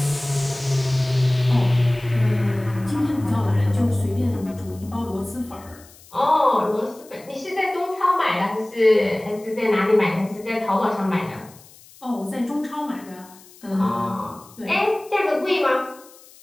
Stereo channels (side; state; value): left; noise; hiss, 24 dB below the sound